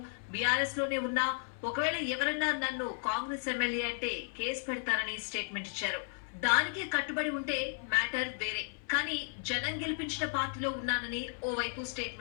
బీఆర్ఎస్ లోనే ఉన్నా, ఒకవేళ ఎవరన్నా నన్ను కాంగ్రెస్ ఎమ్మెల్యే అంటే కేసు పెడతారని స్టేట్మెంట్ ఇచ్చారు. దానికే కట్టుబడి ఉంటే మ్యాటర్ వేరే. కానీ జనం గెలిపించిన పార్టీలో ఉన్నానని ఓవైపు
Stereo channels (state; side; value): silent; right; 55 dB below the other